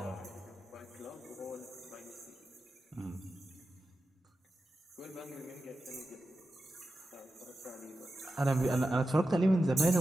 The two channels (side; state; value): both; normal; correlation 0.92